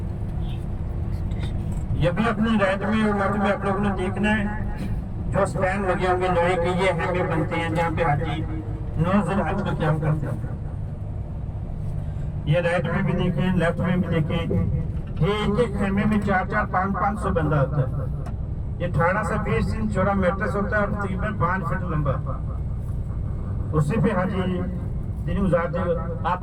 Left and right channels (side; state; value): both; identical; correlation 1.00